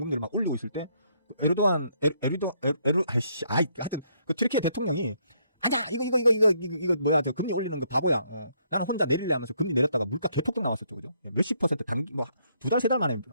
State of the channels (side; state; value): both; inverted; correlation -0.71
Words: 막 올리고 있을 때 하여튼 그 튀르키예 대통령이 아니야 이거 뭐야, 저 금리 올리는 거 바보야. 나는 혼자 내릴래 하면서 금리 내렸다가 물가 개폭등 나왔었죠, 그죠? 몇십 퍼센트 뭐 2달 3달 만에